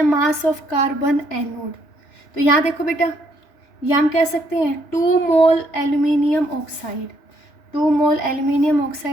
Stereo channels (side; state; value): right; late; 3.4 ms